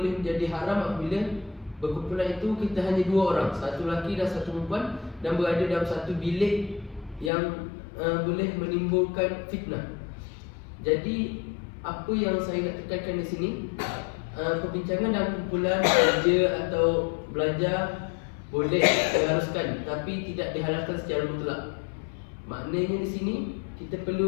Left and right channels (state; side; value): drops out; right; at 7.3 s